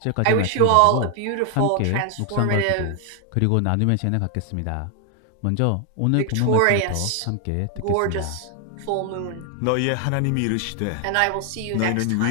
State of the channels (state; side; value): different; both; correlation 0.00